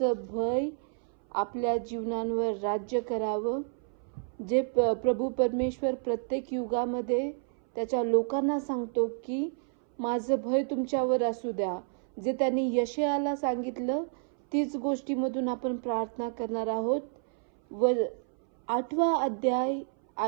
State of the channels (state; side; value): silent; left; 58 dB below the other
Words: भय आपल्या जीवनांवर राज्य करावं. जे प्रभू परमेश्वर प्रत्येक युगामध्ये त्याच्या लोकांना सांगतो की माझं भय तुमच्यावर असू द्या. जे त्यांनी यशायाला सांगितलं तीच गोष्टीमधून आपण प्रार्थना करणार आहोत. व 8वा अध्याय